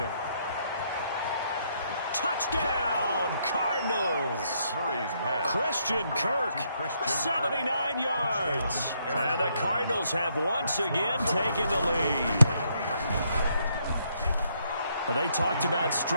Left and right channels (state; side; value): inverted; both; correlation -0.73